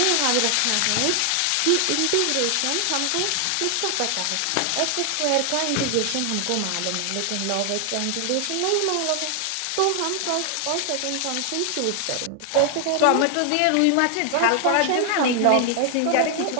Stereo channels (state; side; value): different; both; correlation 0.00